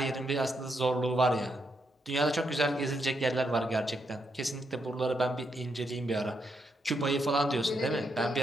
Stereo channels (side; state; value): both; normal; correlation 0.80